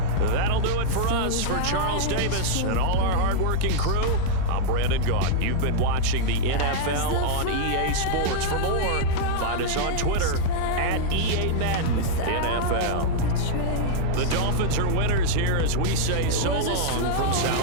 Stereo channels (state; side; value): different; both; correlation -0.01